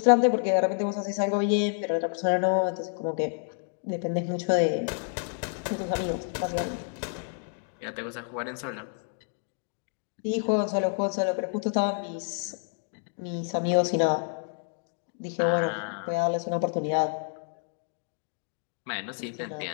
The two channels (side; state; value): right; silent; 59 dB below the other